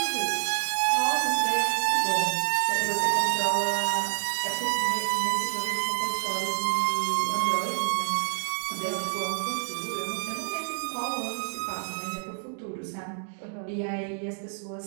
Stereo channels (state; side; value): silent; left; 59 dB below the other